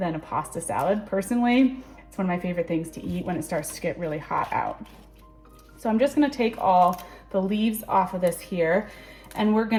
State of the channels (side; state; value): both; identical; correlation 1.00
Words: a pasta salad? Personally, it's one of my favorite things to eat when it starts to get really hot out. So I'm just gonna take all the leaves off of this here, and we're